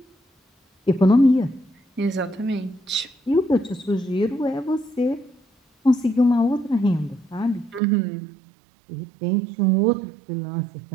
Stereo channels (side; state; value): left; drops out; at 7.8 s